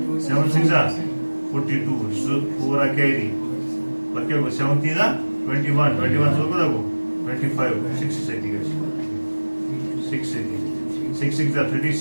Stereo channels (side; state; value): both; inverted; correlation -1.00